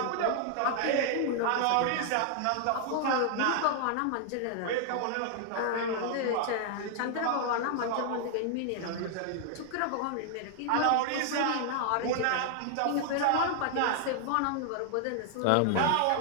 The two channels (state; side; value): different; both; correlation 0.00